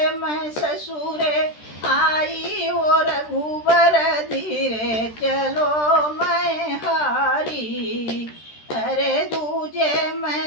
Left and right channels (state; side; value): late; right; 13 ms